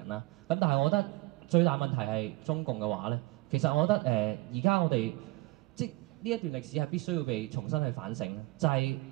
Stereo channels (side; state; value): left; quieter; 21.3 dB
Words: 啦。咁但係我覺得最大問題係中共嘅話咧，其實我覺得而家我哋即呢一段歷史係必須要被重新去反省，就係